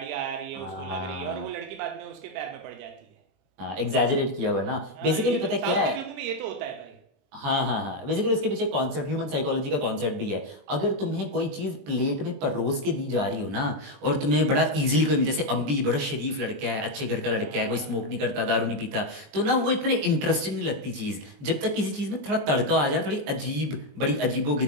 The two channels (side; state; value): left; late; 20 ms